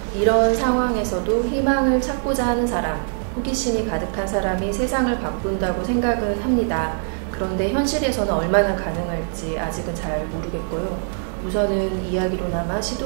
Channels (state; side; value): silent; left; 64 dB below the other